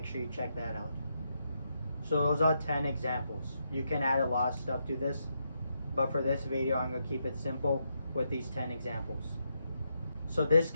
sure you check that out. So those are 10 examples. You can add a lot of stuff to this, but for this video I'm going to keep it simple with these 10 examples. So this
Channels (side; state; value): both; inverted; correlation -0.82